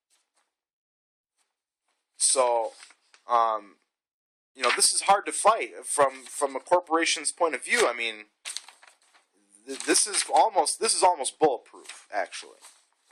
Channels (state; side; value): identical; both; correlation 1.00